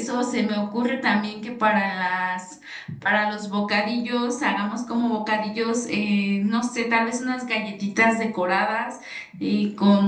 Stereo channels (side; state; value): both; identical; correlation 1.00